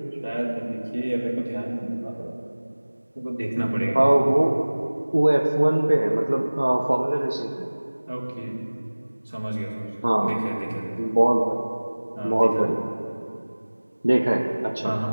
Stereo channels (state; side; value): inverted; both; correlation -1.00